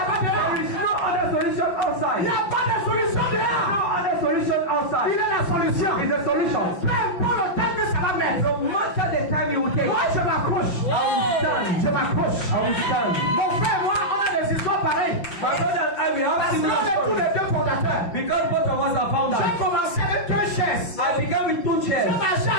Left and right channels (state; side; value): late; right; 5.8 ms